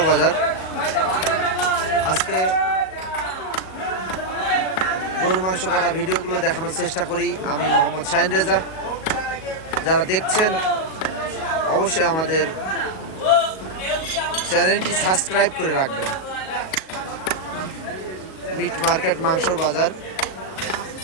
বাজার। আজকে গরু মাংস কাটা ভিডিওগুলো দেখানোর চেষ্টা করি আমি মোহাম্মদ শাহিন রেজা। যারা দেখছেন অবশ্যই আমাদের চ্যানেলটি সাবস্ক্রাইব করে রাখবেন। মিট মার্কেট মাংসর বাজার,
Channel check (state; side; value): late; right; 38 ms